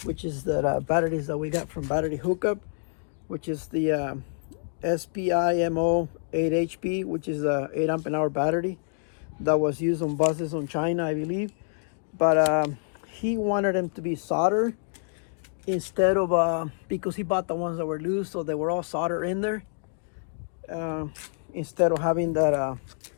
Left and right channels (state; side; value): silent; right; digital silence